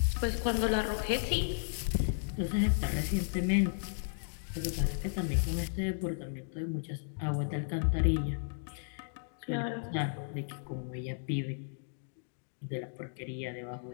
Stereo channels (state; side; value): silent; right; digital silence